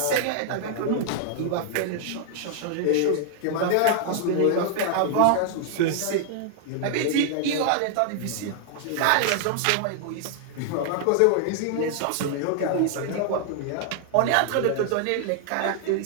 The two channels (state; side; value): different; both; correlation 0.00